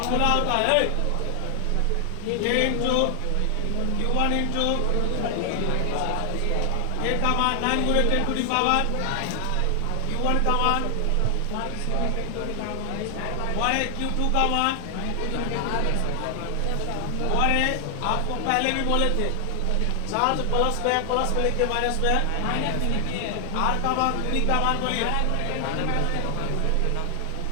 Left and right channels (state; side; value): different; both; correlation 0.00